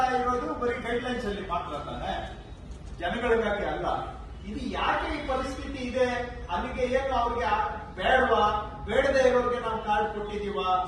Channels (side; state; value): both; identical; correlation 1.00